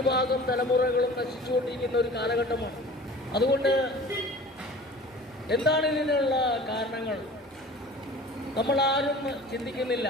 തലമുറകളും നശിച്ചുകൊണ്ടിരിക്കുന്ന ഒരു കാലഘട്ടമാണ്. അതുകൊണ്ട് എന്താണ് ഇതിനുള്ള കാരണങ്ങൾ നമ്മൾ ആരും ചിന്തിക്കുന്നില്ല.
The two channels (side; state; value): both; normal; correlation 0.42